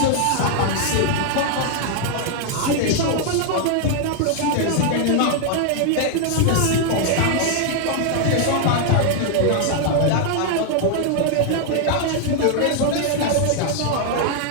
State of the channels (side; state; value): both; different; correlation 0.00